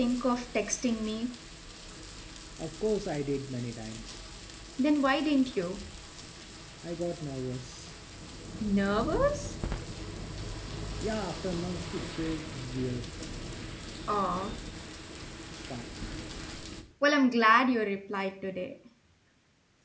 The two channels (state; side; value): identical; both; correlation 1.00